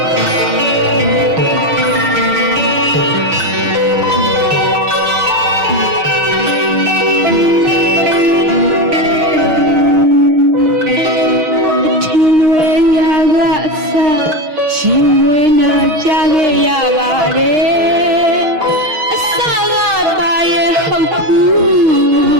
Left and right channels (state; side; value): late; left; 6.1 ms